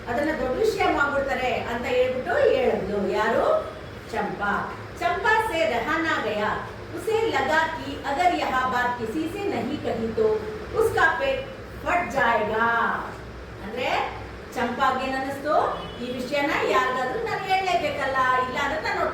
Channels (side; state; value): both; identical; correlation 1.00